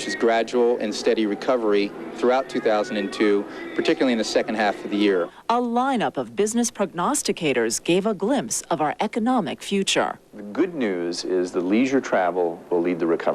is gradual and steady recovery throughout 2002, particularly in the second half of the year. A lineup of business prognosticators gave a glimpse of our economic future. The good news is the leisure travel will lead the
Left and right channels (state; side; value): identical; both; correlation 1.00